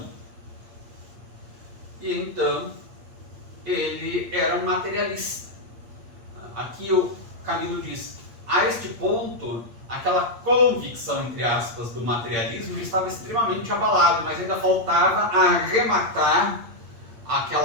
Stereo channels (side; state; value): left; late; 8.6 ms